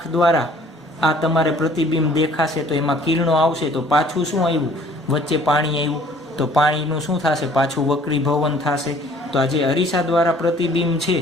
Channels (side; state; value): both; normal; correlation 0.55